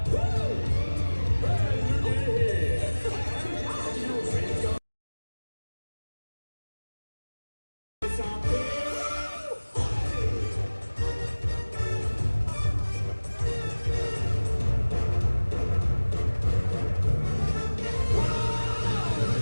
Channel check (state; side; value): inverted; both; correlation -1.00